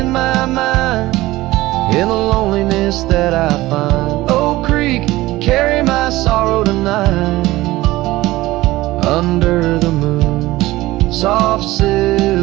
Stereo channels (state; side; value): quieter; left; 18.0 dB